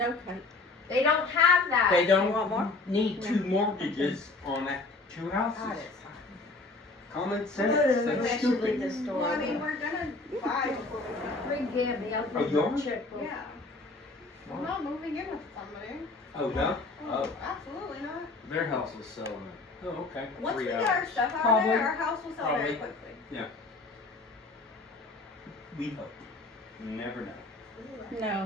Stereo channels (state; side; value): quieter; right; 3.4 dB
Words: kite. They don't have that. They You want more? don't need two mortgages on that, two houses. Common sense, that's stupid. Well, I mean, we're gonna buy before we go. Bring Gabby, I'll Oh, give you a yours? checkbook. Yeah. I'm not moving in with somebody. Oh, no? Oh, Absolutely not. Their house is selling oh, okay. Once we 3 get our hours. stuff out of Probably. there, our house will sell very Probably. quickly. We hope. You never know.